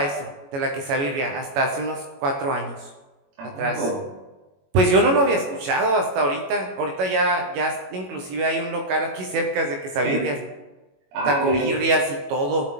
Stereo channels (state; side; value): late; left; 22 ms